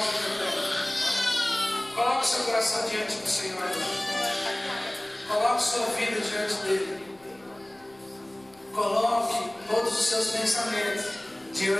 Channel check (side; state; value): left; noise; rumble, 30 dB below the sound